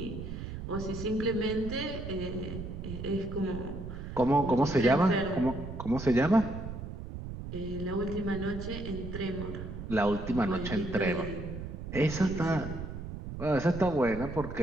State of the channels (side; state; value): right; noise; rumble, 8 dB below the sound